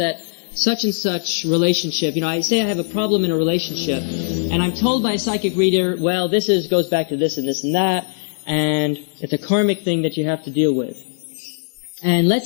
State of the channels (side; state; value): right; silent; digital silence